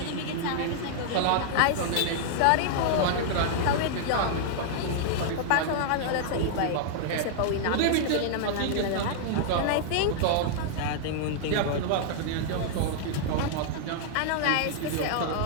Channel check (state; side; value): different; both; correlation -0.01